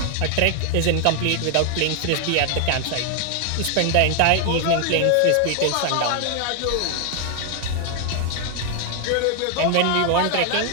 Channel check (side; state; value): both; different; correlation 0.00